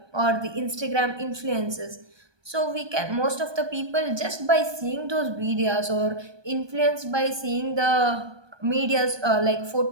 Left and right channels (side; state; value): left; late; 1.2 ms